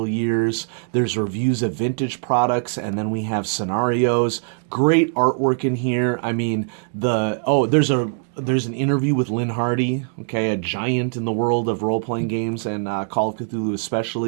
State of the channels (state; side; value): silent; left; 60 dB below the other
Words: years. There's reviews of vintage products, and then we have scenarios. Great artwork in here. I mean, there's an interview with Lynn Hardy, okay, a giant in the world of role-playing games and Call of Cthulhu